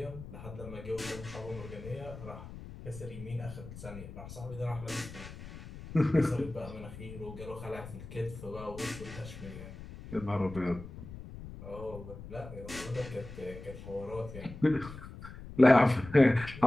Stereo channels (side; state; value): left; noise; rumble, 13 dB below the sound